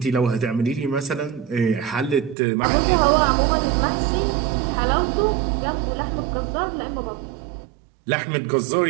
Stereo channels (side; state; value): left; drops out; at 2.4 s